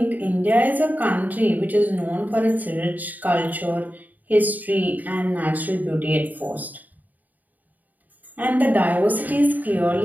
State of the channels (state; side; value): late; left; 0.082 ms